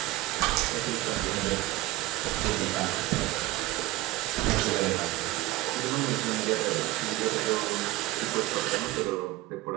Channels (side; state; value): left; quieter; 17.7 dB